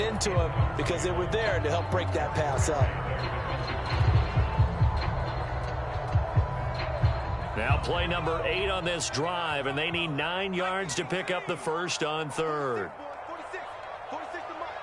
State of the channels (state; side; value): identical; both; correlation 1.00